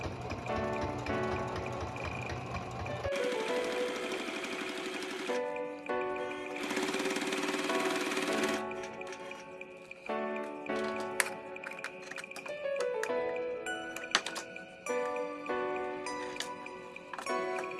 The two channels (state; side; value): identical; both; correlation 1.00